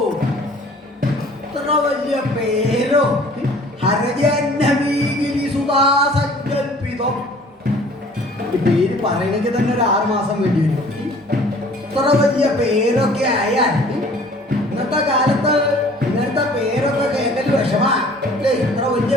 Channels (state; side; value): normal; both; correlation 0.51